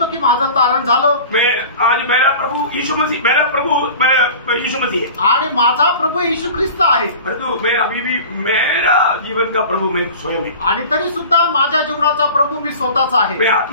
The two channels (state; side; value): inverted; both; correlation -0.39